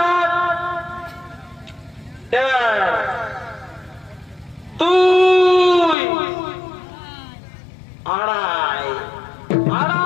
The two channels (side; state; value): right; drops out; at 6.0 s